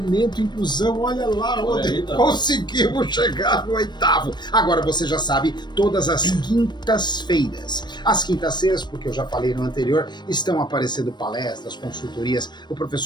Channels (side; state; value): right; late; 0.21 ms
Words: Inclusão, olha lá, Rodrigo, conseguimos chegar no oitavo. Agora você já sabe, todas as quintas-feiras, porque eu já falei no anterior, estão aparecendo palestras, consultorias, o